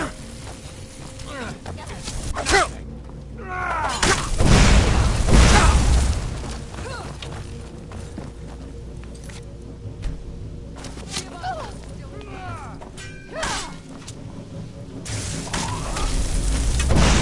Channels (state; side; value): identical; both; correlation 1.00